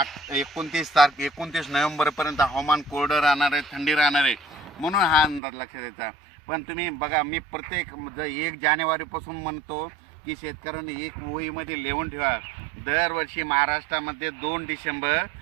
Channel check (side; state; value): left; drops out; at 5.4 s